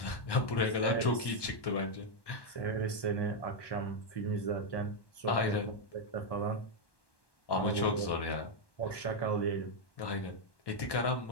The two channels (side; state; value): right; late; 1.1 ms